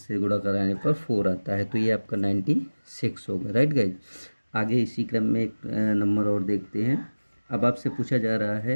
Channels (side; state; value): both; inverted; correlation -1.00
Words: गुणा कराने पर 4 आता है। तो ये आपका 96 होगा, राइट गाइज। आगे इसी क्रम में एक नंबर और देखते हैं। अब आपसे पूछा जा रहा